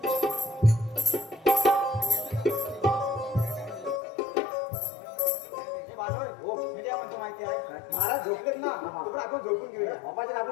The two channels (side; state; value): right; drops out; at 4.0 s